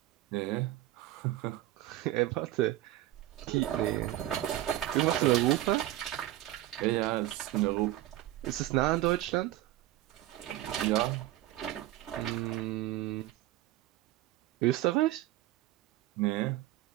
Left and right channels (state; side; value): quieter; left; 15.1 dB